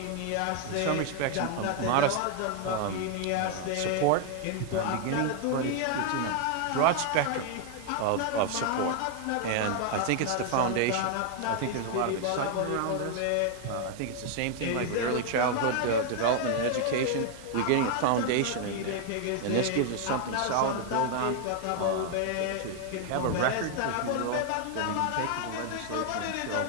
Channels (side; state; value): both; different; correlation 0.00